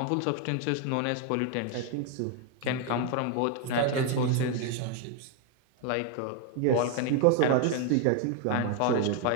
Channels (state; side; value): different; both; correlation 0.01